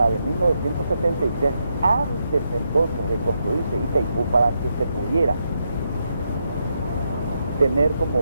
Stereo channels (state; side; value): inverted; both; correlation -0.81